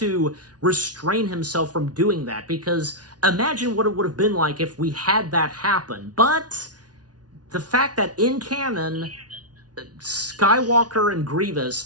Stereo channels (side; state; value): left; late; 0.69 ms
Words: restrain himself from doing that, because imagine what it would have been like if we had that happen. But the fact that in canon, Skywalker and